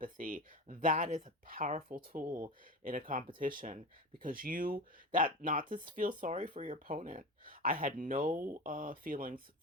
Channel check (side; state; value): both; normal; correlation 0.27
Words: That is a powerful tool in a competition, because not to feel sorry for your opponent. I had no feelings